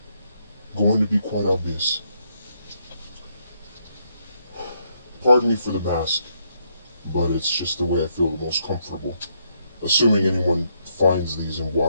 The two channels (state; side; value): inverted; both; correlation -0.76